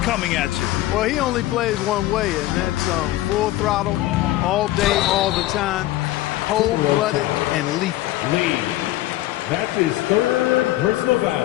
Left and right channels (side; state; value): right; quieter; 16.2 dB